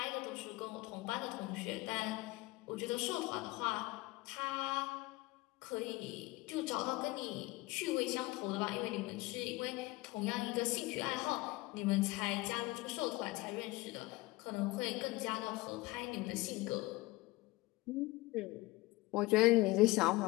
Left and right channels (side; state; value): right; quieter; 21.0 dB